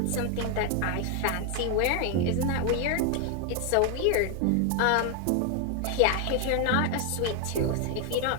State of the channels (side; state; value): both; different; correlation 0.01